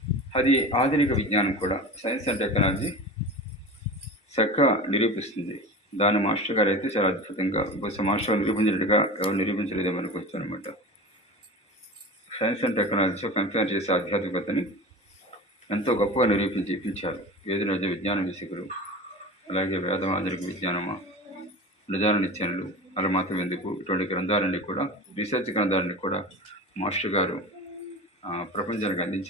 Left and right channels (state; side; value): normal; both; correlation 0.32